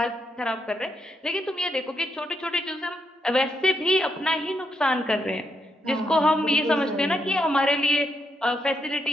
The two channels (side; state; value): both; normal; correlation 0.80